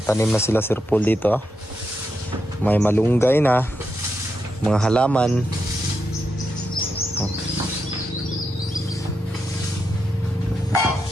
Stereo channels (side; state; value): both; normal; correlation 0.84